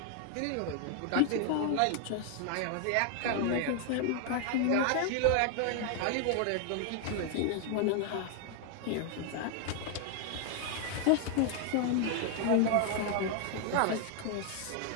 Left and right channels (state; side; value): different; both; correlation 0.00